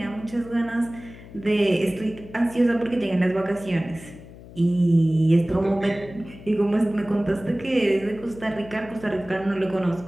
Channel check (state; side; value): noise; left; hum, 18 dB below the sound